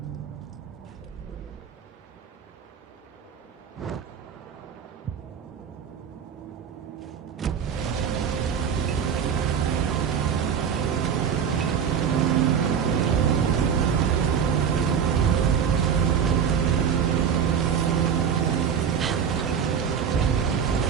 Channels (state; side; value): quieter; left; 7.6 dB